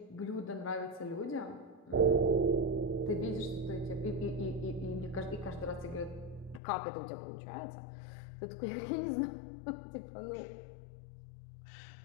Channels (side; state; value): right; drops out; at 6.6 s